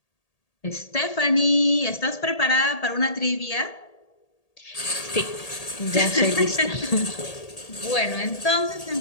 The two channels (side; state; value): right; late; 1.8 ms